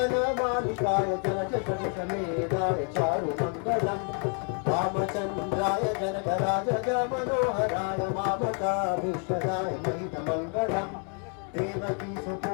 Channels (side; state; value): right; quieter; 37.8 dB